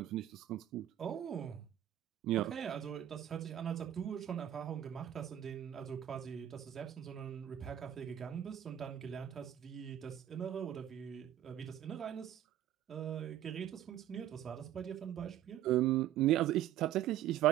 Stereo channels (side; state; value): left; quieter; 11.7 dB